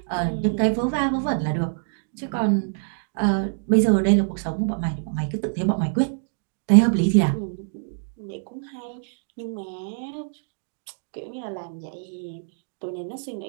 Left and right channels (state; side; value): silent; left; digital silence